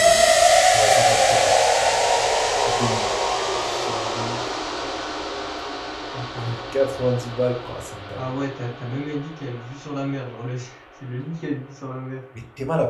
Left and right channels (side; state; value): both; identical; correlation 1.00